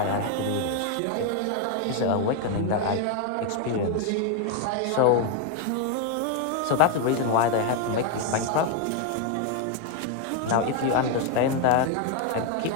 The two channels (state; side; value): different; both; correlation 0.01